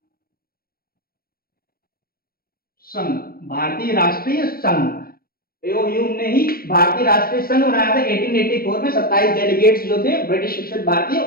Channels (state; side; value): late; right; 0.44 ms